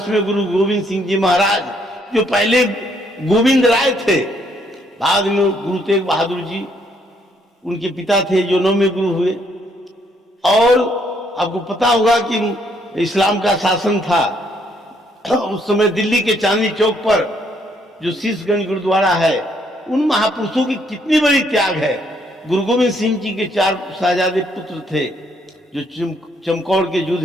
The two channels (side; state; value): both; normal; correlation 0.70